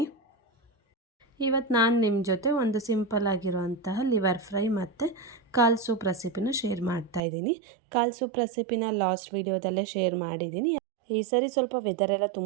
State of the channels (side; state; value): left; drops out; at 7.2 s